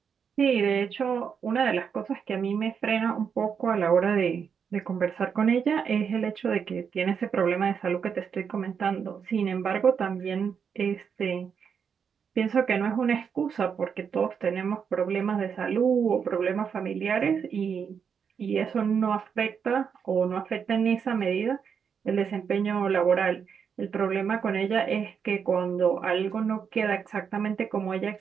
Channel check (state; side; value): quieter; left; 6.9 dB